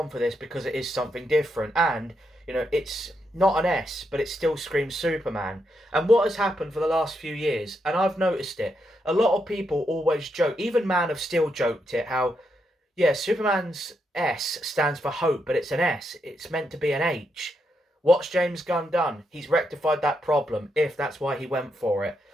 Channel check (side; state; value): both; normal; correlation 0.81